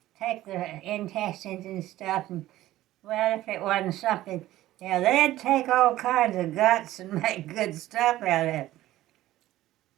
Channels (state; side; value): quieter; left; 15.2 dB